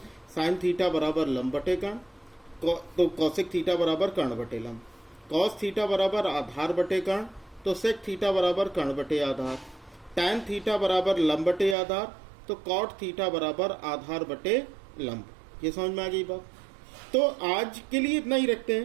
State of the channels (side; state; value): left; drops out; at 11.8 s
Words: साइन थीटा बराबर लंब बटे कर्ण, तो कौशिक थीटा बराबर कर्ण बटे लंब। कॉस थीटा बराबर आधार बटे कर्ण, तो सेक थीटा बराबर कर्ण बटे आधार। टैन थीटा बराबर लंब बटे आधार, तो कॉट थीटा बराबर आधार बटे लंब। ये समझ में आ गई बात। तो आज के लिए इतना ही रखते